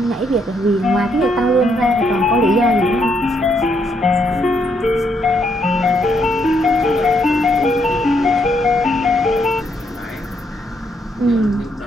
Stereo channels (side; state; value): both; normal; correlation 0.74